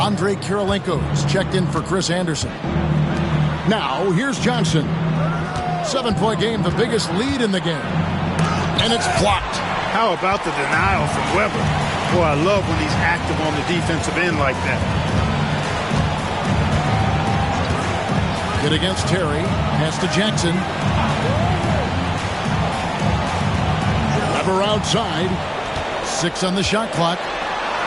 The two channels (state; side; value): identical; both; correlation 1.00